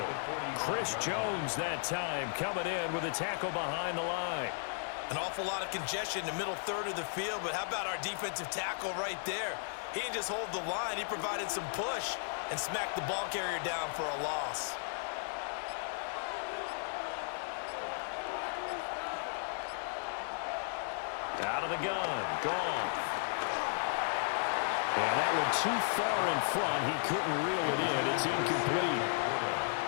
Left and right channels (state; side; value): silent; right; 54 dB below the other